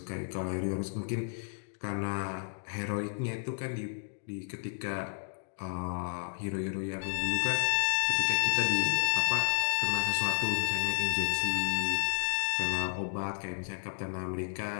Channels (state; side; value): silent; right; digital silence